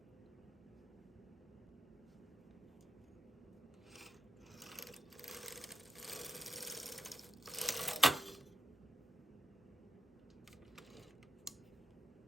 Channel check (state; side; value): normal; both; correlation 0.79